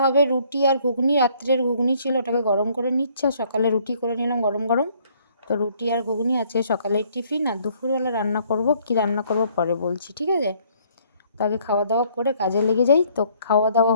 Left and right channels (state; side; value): inverted; both; correlation -0.63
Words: হবে রুটি আর ঘুগনি। রাত্রের ঘুগনি ছিল, ওটাকে গরম করে নিচ্ছে, আর সকালে রুটি করে নিলাম গরম গরম। তো রুটি আর ঘুগনি আছে সকালের টিফিন। আর দুপুরবেলা রান্না করব, কি রান্না করব পরে বলছি, ঠিক আছে? তো আগে খাওয়া দাওয়া করে কাজে লেগে যাই। তো খাওয়া দাওয়া